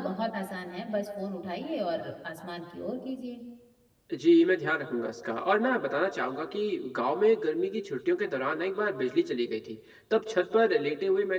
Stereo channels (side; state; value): both; identical; correlation 1.00